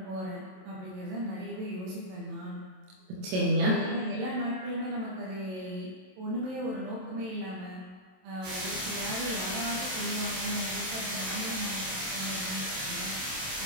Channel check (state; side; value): late; left; 27 ms